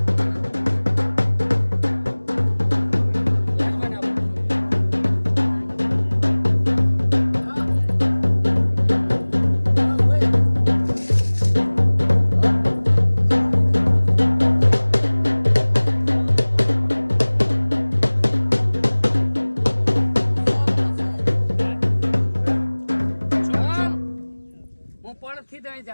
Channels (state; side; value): inverted; both; correlation -1.00